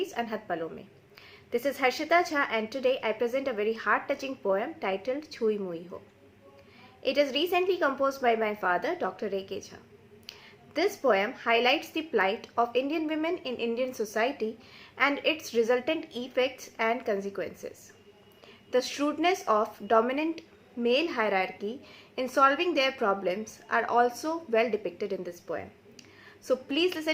Anhat Palo Mein. This is Harshita Jha and today I present a very heart-touching poem titled Chui Mui Ho. It is recently composed by my father, Dr. A.K. Jha. This poem highlights the plight of Indian women in Indian society and its resultant effects and consequences. The shrewdness of dominant male hierarchy in solving their problems are also well depicted in this poem. So please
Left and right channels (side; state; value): both; identical; correlation 1.00